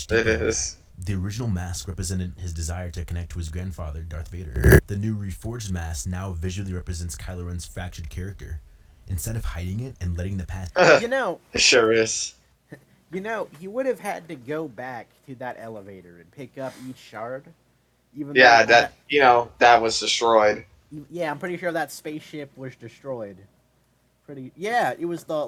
deeper. It is. The original mask represented his desire to connect to his grandfather, Darth Vader. The new reforged mask now visually represents Kylo Ren's fractured character. Instead of hiding it and letting the past... You know, It sure is. he would have had to go back to that elevator and pick up each shard. Even Yeah, though that was destroyed. yeah, I'm pretty sure that spaceship was destroyed. Yeah, it was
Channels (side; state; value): both; identical; correlation 1.00